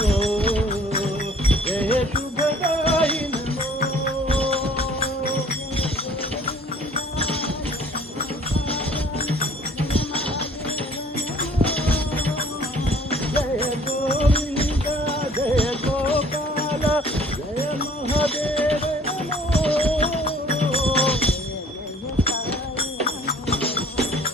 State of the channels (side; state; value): both; normal; correlation 0.53